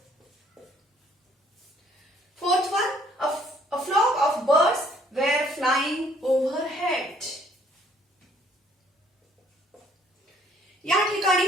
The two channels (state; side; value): normal; both; correlation 0.62